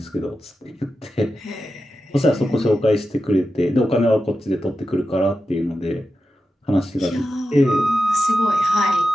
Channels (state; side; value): normal; both; correlation 0.91